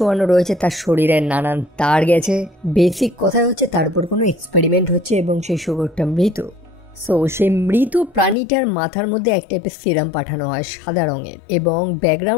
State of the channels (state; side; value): drops out; right; at 8.3 s